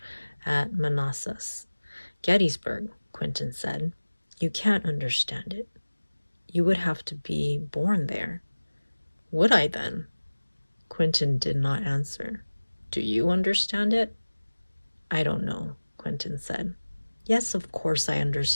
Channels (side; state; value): both; inverted; correlation -1.00